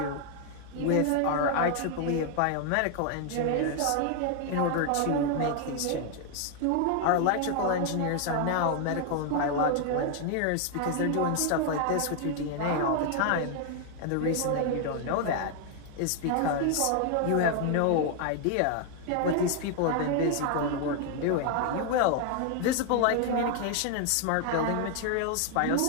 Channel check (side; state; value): both; different; correlation 0.00